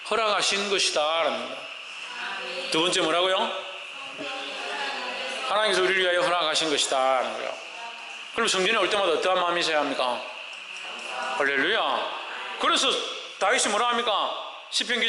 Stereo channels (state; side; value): identical; both; correlation 1.00